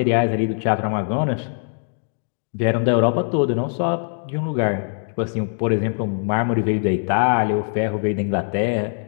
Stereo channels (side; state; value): right; silent; 64 dB below the other